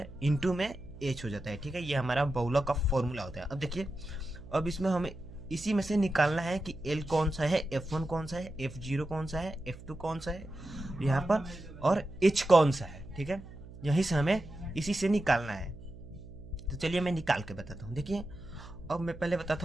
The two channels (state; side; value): noise; right; hum, 16 dB below the sound